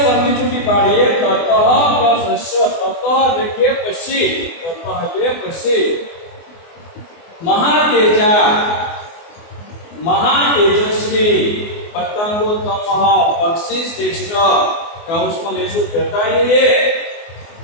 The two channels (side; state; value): right; late; 24 ms